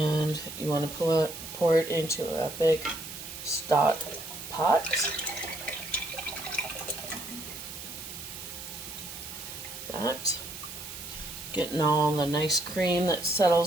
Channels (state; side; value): noise; right; hiss, 10 dB below the sound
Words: you want to pour it into a big stock pot. That. Getting all the nice cream that